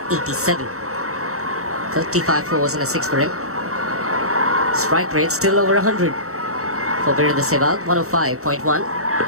35 fours and a 6 for him. Strike rate still over 100 for Virendra Sehwag, 105.1.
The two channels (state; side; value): late; left; 0.64 ms